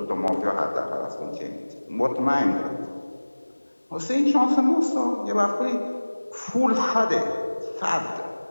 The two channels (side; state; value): both; inverted; correlation -1.00